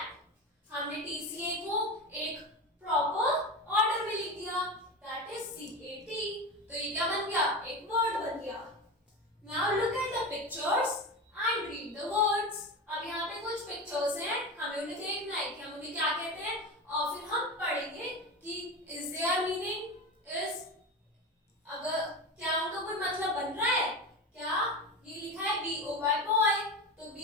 हमने TCA को एक proper order में लिख दिया, that is CAT. तो ये क्या बन गया? एक वर्ड बन गया. Now look at the pictures and read the words. अब यहाँ पे कुछ पिक्चर्स हैं, हमें उन्हें देखना है कि हम उन्हें क्या कहते हैं और फिर हम पढ़ेंगे कि is their meaning, is अगर क्या उनका कोई मतलब बन रहा है क्या. ये लिखा है BOY boy, तो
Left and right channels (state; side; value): normal; both; correlation 0.24